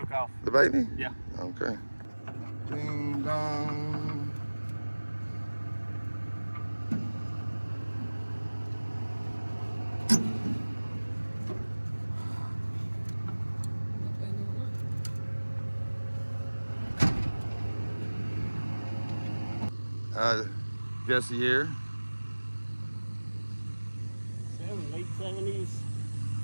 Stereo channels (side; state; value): both; inverted; correlation -1.00